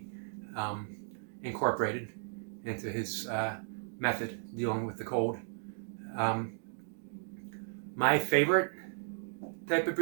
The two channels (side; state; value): left; silent; digital silence